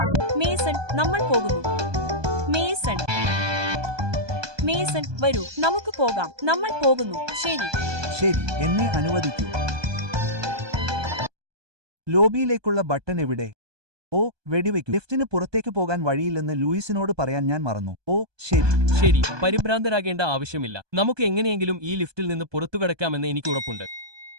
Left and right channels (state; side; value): late; left; 1.2 ms